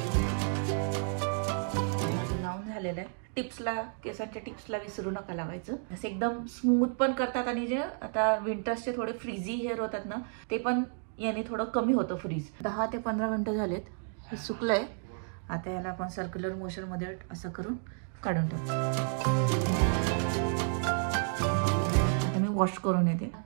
लावून झालेलं आहे. टिप्सला, केसांच्या टिप्सला विसरू नका लावायचं. असं एकदम स्मूथ पण करतात. आणि जे आता विंटर्सचे थोडे फ्रीझी हेअर होतात ना, ते पण याने थोडं कमी होतं फ्रीज. 10 ते 15 मिनिटं झालेत. हे सुकलंय. आता याला आपण सर्क्युलर मोशन मध्ये असं करून काढून टाकू. आता मी वॉश करून येते.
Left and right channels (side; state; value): left; silent; 57 dB below the other